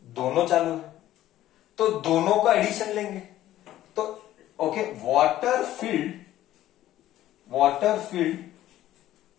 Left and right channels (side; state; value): right; quieter; 13.7 dB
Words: दोनों चालू है, तो दोनों का एडिशन लेंगे. तो okay, water field